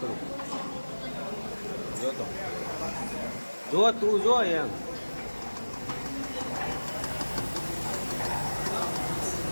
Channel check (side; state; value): both; inverted; correlation -1.00